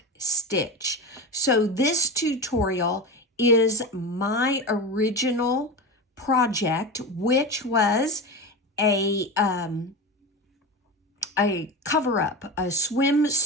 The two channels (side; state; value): both; normal; correlation 0.24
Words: stitch. So this tutorial is my original project, which was a cover-up, a